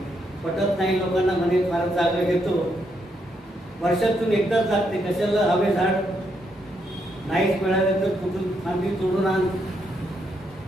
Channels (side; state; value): both; normal; correlation 0.78